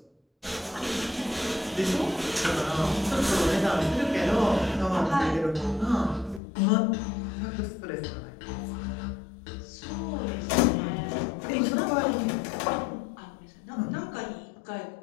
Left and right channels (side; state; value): right; drops out; at 6.4 s